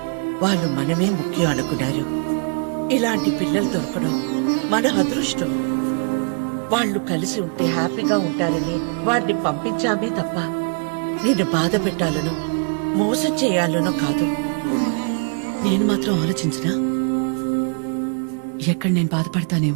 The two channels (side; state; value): left; quieter; 39.0 dB